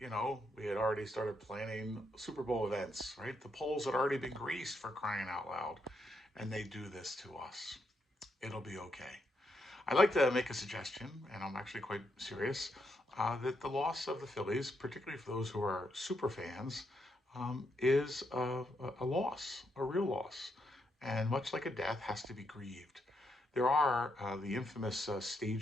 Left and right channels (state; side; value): normal; both; correlation 0.79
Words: we had already started planning Super Bowl events, right? The polls had already been greased for crying out loud. And they do this to us. It'll be okay. I'd like to make a suggestion, and I'm actually quite serious, that the loss of the Phillies, particularly for those who are super fans, is a loss, a real loss. And much like a death, has to be grieved. There are the infamous